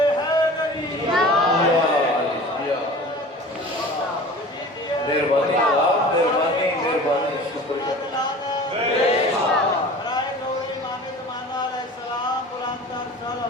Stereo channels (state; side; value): normal; both; correlation 0.40